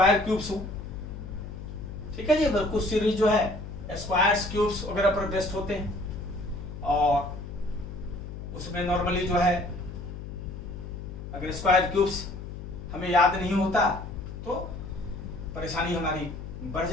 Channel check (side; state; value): left; noise; hum, 9 dB below the sound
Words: क्यूब्स हो। ठीक है जी, अगर कुछ सीरीज जो है स्क्वायर्स क्यूब्स वगैरह पर बेस्ड होते हैं और उसमें नॉर्मली जो है अगर स्क्वायर क्यूब्स हमें याद नहीं होता तो परेशानी हमारी बढ़